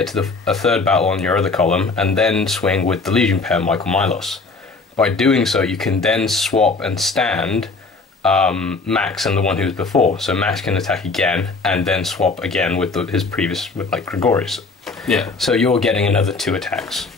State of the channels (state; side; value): quieter; right; 3.9 dB